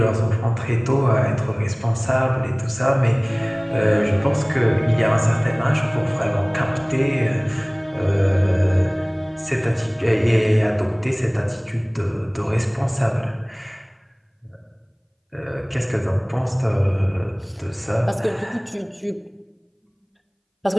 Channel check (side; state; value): both; identical; correlation 1.00